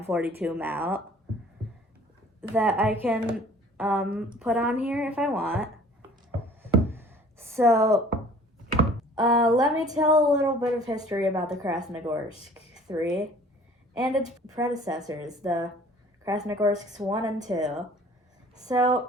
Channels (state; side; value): normal; both; correlation 0.51